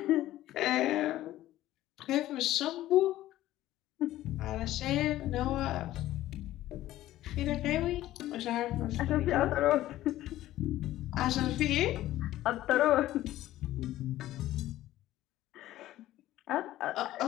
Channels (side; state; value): right; quieter; 14.6 dB